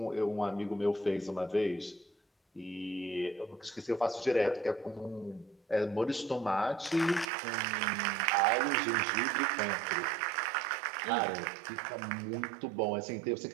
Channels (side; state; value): left; drops out; at 7.3 s